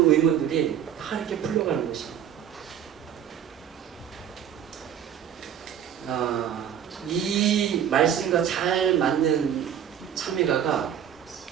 의문들이 다 이렇게 풀려가는 것입니다. 이 말씀과 잘 맞는 찬미가가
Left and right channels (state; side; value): quieter; left; 9.6 dB